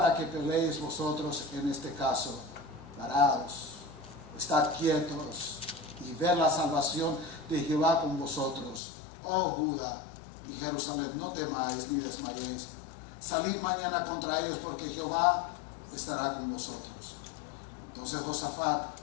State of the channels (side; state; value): right; drops out; at 8.8 s